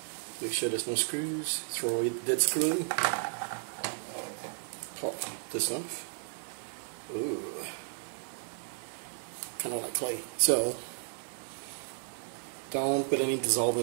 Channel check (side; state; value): left; silent; 55 dB below the other